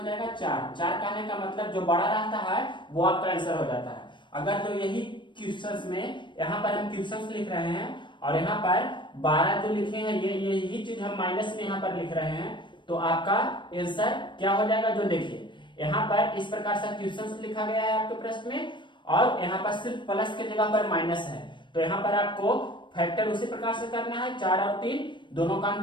जाएगा 4। 4 कहने का मतलब जो बड़ा रहता है वो आपका आंसर हो जाता है। अगर जो यही क्वेश्चंस में यहाँ पर हम क्वेश्चंस लिख रहे हैं और यहाँ पर 12 जो लिखे हैं ये यही चीज हम माइनस में यहाँ पर लिख रहे हैं, तो आपका आंसर क्या हो जाएगा, जो देखिए यहाँ पर इस प्रकार से क्वेश्चंस लिखा गया है आपके प्रश्न में, और यहाँ पर सिर्फ प्लस के जगह पर माइनस है, तो यहाँ पर आपको फैक्टर उसी प्रकार से करना है, 4 और 3 दोनों का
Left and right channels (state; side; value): late; right; 0.23 ms